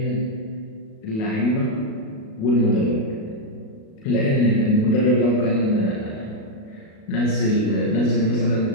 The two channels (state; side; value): late; right; 37 ms